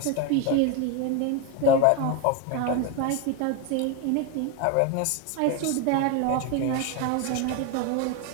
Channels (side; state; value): both; different; correlation 0.02